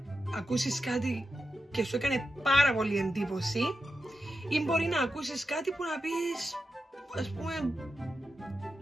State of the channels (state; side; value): normal; both; correlation 0.90